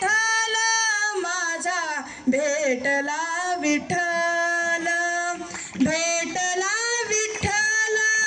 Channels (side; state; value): both; identical; correlation 1.00